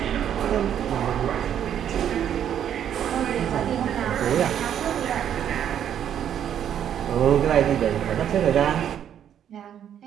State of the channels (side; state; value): left; quieter; 9.6 dB